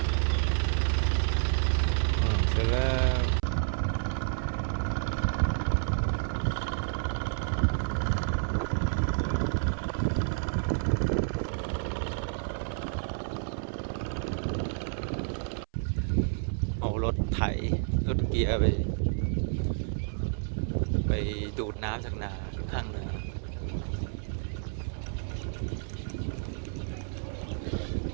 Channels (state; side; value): silent; left; 56 dB below the other